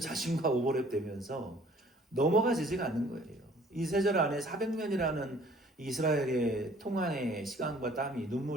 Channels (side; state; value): both; normal; correlation 0.56